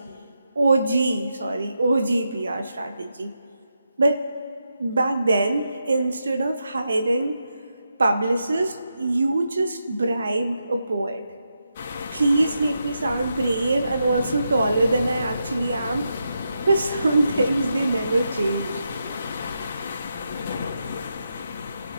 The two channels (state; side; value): inverted; both; correlation -0.85